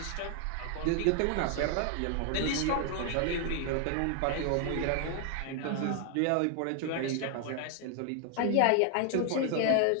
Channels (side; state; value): both; different; correlation 0.00